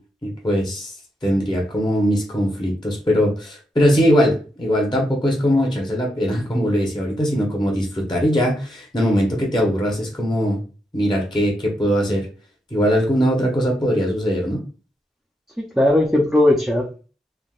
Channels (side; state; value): both; normal; correlation 0.82